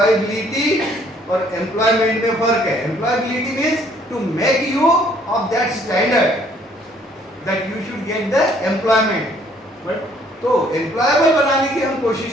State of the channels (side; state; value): both; normal; correlation 0.62